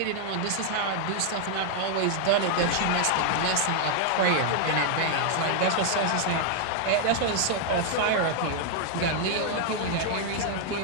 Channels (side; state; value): both; different; correlation 0.00